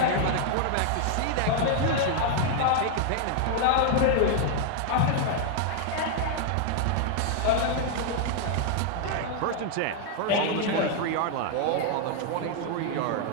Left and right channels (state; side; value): different; both; correlation 0.00